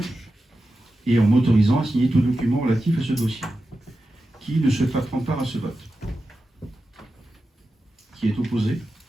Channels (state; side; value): normal; both; correlation 0.92